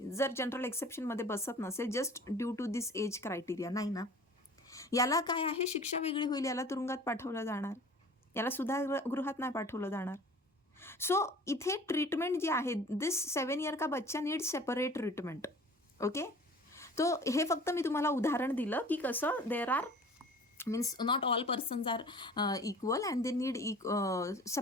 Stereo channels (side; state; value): both; normal; correlation 0.45